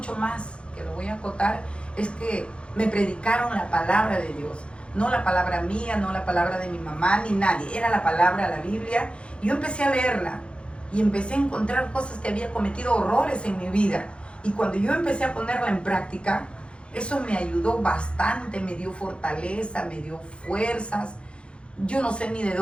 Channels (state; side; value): late; right; 0.058 ms